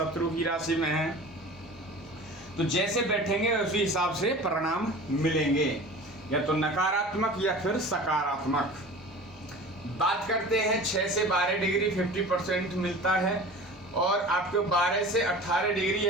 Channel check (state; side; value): normal; both; correlation 0.38